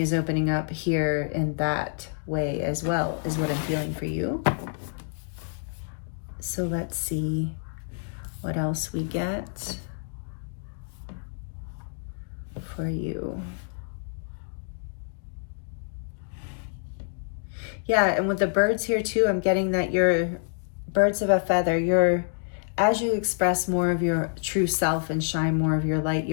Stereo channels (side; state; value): right; silent; digital silence